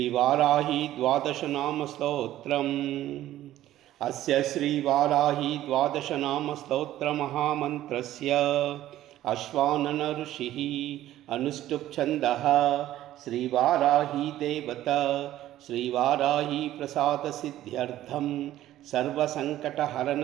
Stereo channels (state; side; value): quieter; left; 13.7 dB